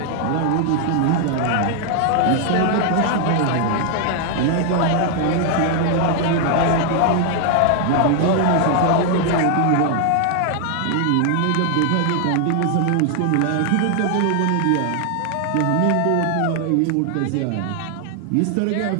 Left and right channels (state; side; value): different; both; correlation 0.00